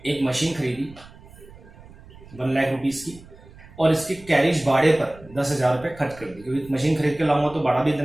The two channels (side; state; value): right; noise; rumble, 21 dB below the sound